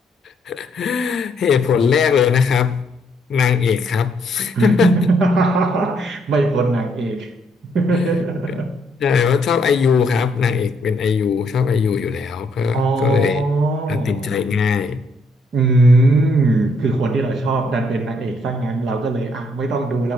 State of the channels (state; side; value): normal; both; correlation 0.71